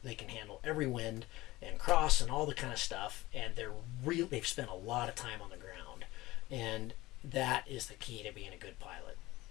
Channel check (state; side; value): quieter; right; 18.8 dB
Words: They can handle every wind and cross and all the kind of stuff, and they've spent a lot of time on the ground, and that is the key to being a good pilot,